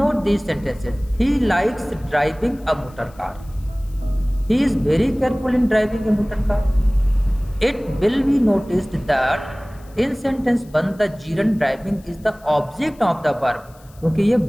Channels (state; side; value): noise; left; hiss, 28 dB below the sound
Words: these sentences. He likes driving a motor car. He is very careful in driving a motor car. It will be noticed that in sentence 1 the gerund driving is the object of the verb. क्योंकि ये